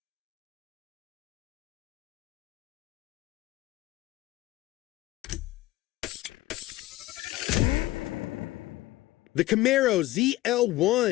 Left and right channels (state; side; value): quieter; right; 17.3 dB